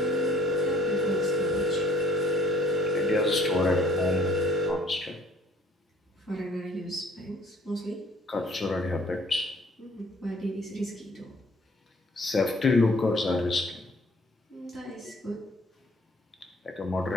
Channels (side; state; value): both; normal; correlation 0.57